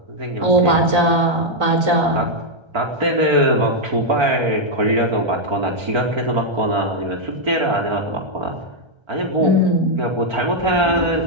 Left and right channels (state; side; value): late; left; 1.3 ms